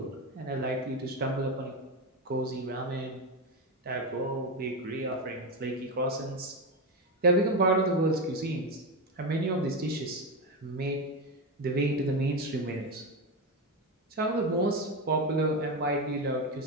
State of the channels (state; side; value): normal; both; correlation 0.15